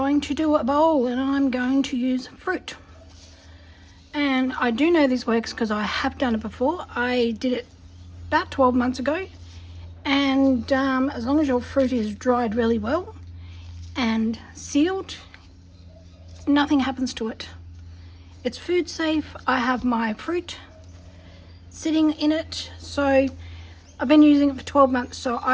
to do a bowl and I'm going to use fruit. And I do know this works because I have done it before. I did it about 12 months ago. And as long as your fruit is dried really well and sealed, nothing happens to it. It's food safe. I have my fruit sitting in it, so I've been using it for 12 months, so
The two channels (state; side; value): identical; both; correlation 1.00